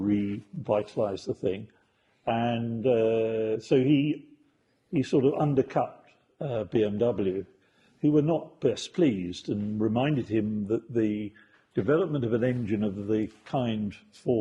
the thing, and so he sort of undercut BMW, who were not best pleased, and reminded him that the development of an engine of the kind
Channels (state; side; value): identical; both; correlation 1.00